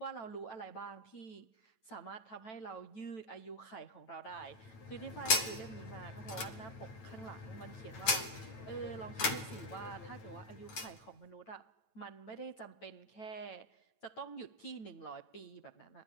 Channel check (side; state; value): right; late; 9.1 ms